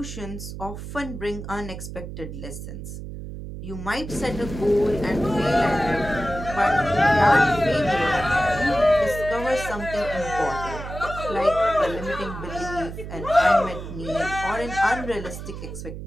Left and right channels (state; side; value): noise; right; hum, 9 dB below the sound